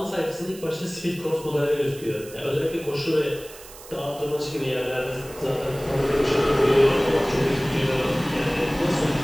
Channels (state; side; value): noise; right; hiss, 18 dB below the sound